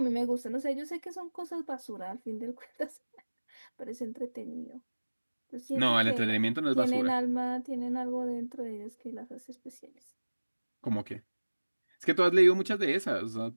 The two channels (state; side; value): inverted; both; correlation -1.00